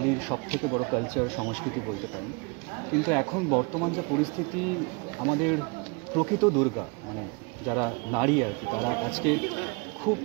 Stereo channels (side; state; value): left; quieter; 31.2 dB